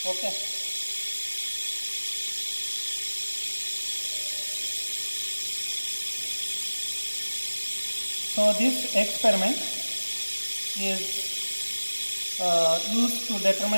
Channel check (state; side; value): inverted; both; correlation -1.00